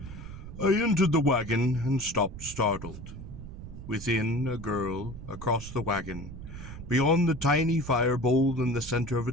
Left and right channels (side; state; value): right; noise; rumble, 12 dB below the sound